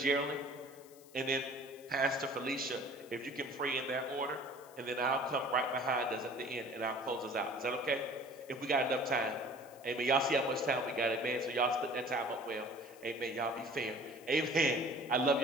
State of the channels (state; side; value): noise; left; hiss, 23 dB below the sound